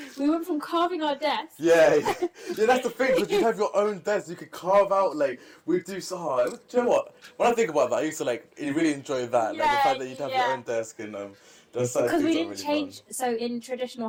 We went from carving our desks. Yeah, that's the thing, because you have your own desk, you could carve out, like, we'd do so hard. Do you know what? When I think about that, I used to, like, really enjoy that. Like, the fact that you'd have your own desk and, because we didn't change, so in traditional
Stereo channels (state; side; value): identical; both; correlation 1.00